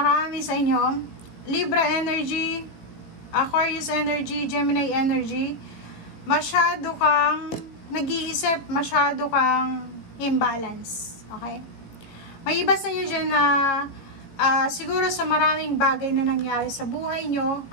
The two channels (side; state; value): right; late; 18 ms